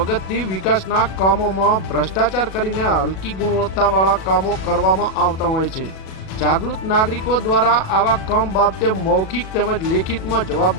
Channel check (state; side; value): late; right; 37 ms